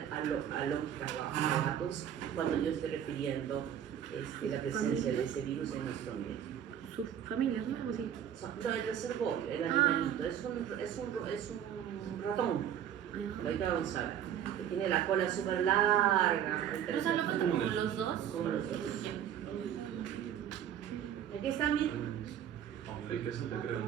alópicos cuando yo estoy refiriendo la presencia de ese virus en nuestro ambiente. Sus familias, ¿no? Algo así. No, el reservorio, el animalito, es un ratón. Ahorita vamos a ver, que tiene la cola súper larga. O sea, lo cuento como los dos. Como los dos. Aquí están, miren.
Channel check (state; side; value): quieter; left; 9.7 dB